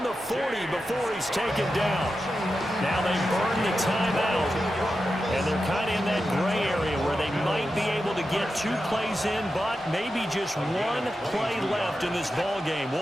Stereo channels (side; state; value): both; normal; correlation 0.90